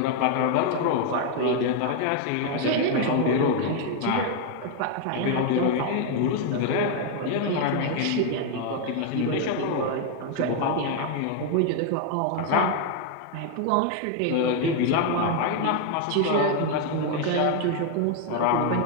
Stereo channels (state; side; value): different; both; correlation 0.00